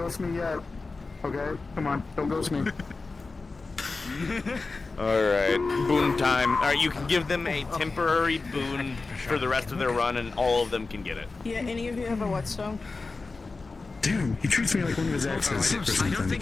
me yet. Okay, come on, don't ghost me. Alright, boon time. Alright, you can give them a temporary boon for the rest of their run, and all of them can get it. Yeah, any of you have a whetstone? Damn, he treats me like one of his exes or something. I don't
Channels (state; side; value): quieter; right; 3.8 dB